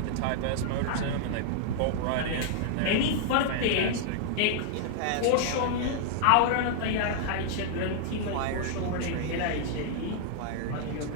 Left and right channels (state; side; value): different; both; correlation -0.01